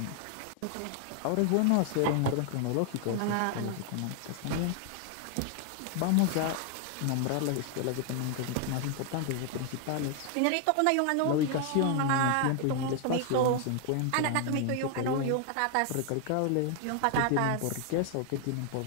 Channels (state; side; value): different; both; correlation 0.00